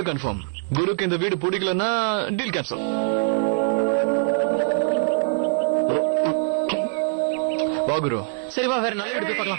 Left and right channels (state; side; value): silent; left; 63 dB below the other